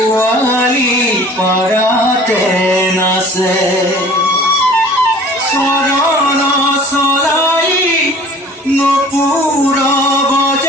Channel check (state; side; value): normal; both; correlation 0.47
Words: পাড়াতে নাচে চরণ চলাই নপুর